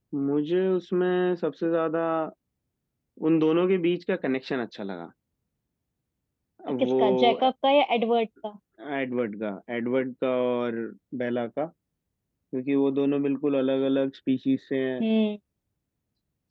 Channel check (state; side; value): identical; both; correlation 1.00